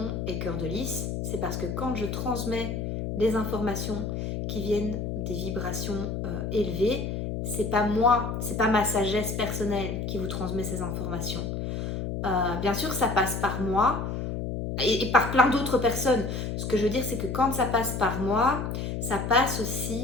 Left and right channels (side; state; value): left; noise; hum, 3 dB below the sound